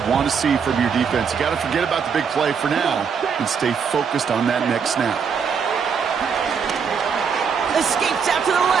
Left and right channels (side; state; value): left; quieter; 6.4 dB